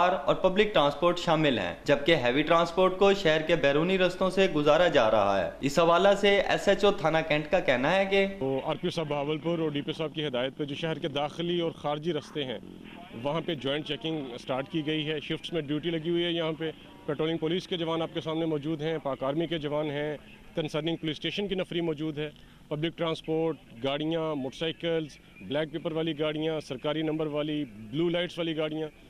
اور پبلک ٹرانسپورٹ شامل ہیں، جبکہ ہیوی ٹرانسپورٹ کو شہر کے بیرونی رستوں سے گزارا جا رہا ہے۔ اس حوالہ سے ایس ایچ او تھانہ کینٹ کا کہنا ہے کہ آر پی او صاحب بہاولپور اور ڈی پی او صاحب کی ہدایت پہ جو شہر کے داخلی اور خارجی رستے ہیں وہاں پہ جوائنٹ چیکنگ سٹارٹ کی گئی ہے، شفٹس میں ڈیوٹی لگی ہوئی ہے۔ یہاں پہ پیٹرولنگ پولیس کے جوان آپ کے سامنے موجود ہیں، پاک آرمی کے جوان ہیں، کنسرننگ پولیس اسٹیشن کی نفری موجود ہے، پبلک ٹرانسپورٹ گاڑیاں، موٹر سائیکلز، بلیک پیپر والی گاڑیاں، سرکاری نمبر والی، بلو لائٹس والی گاڑیاں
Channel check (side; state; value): both; identical; correlation 1.00